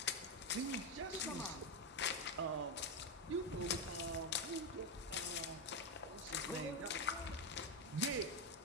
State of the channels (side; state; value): both; normal; correlation 0.08